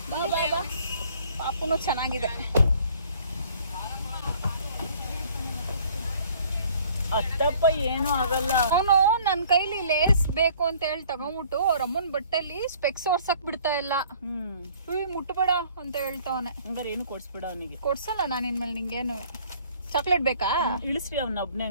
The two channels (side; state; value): both; inverted; correlation -0.55